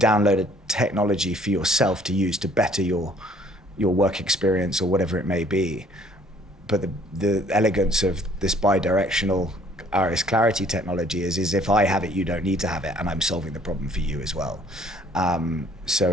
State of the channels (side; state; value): both; normal; correlation 0.58